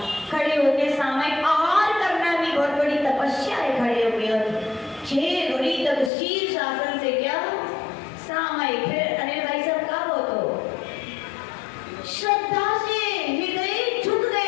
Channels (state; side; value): drops out; right; at 6.1 s